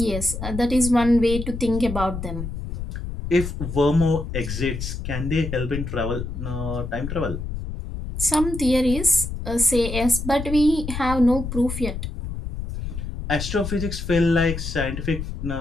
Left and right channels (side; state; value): left; noise; rumble, 6 dB below the sound